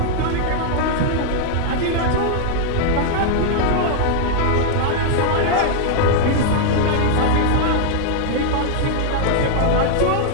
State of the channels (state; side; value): different; both; correlation 0.00